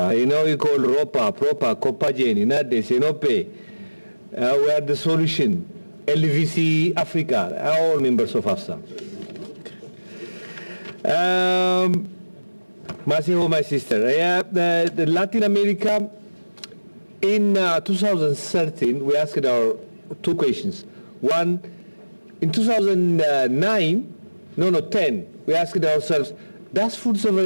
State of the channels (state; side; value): inverted; both; correlation -1.00